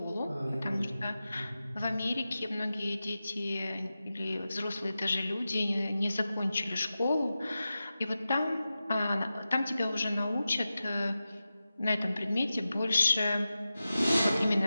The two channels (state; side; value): inverted; both; correlation -0.93